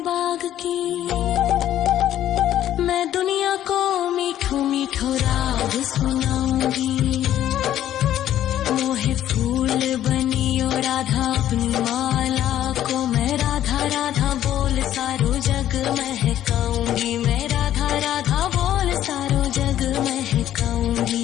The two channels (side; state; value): right; quieter; 12.0 dB